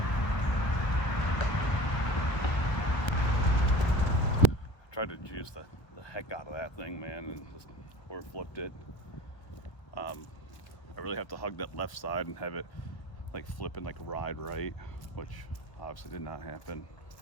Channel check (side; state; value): right; late; 1.3 ms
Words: Tried to juice the heck out of that thing, man, and just flipped it. I really have to hug that left side and have it like flip and like ride right, which obviously did not happen.